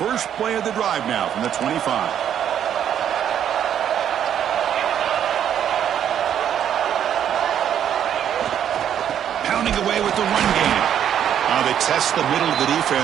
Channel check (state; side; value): quieter; left; 9.6 dB